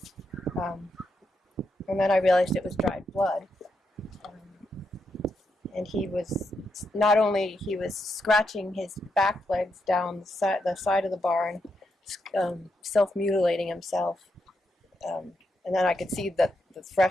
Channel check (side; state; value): both; normal; correlation 0.82